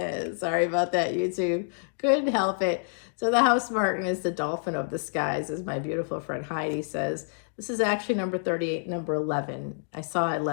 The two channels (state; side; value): silent; right; digital silence